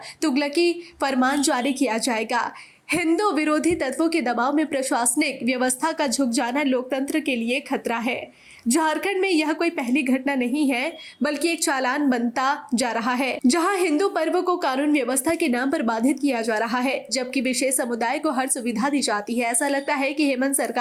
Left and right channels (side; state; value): both; identical; correlation 1.00